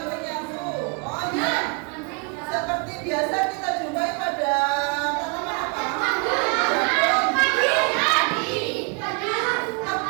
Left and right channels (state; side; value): quieter; left; 33.5 dB